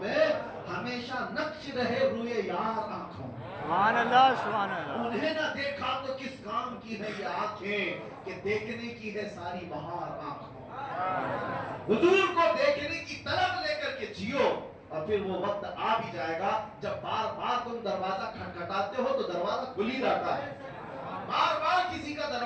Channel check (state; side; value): identical; both; correlation 1.00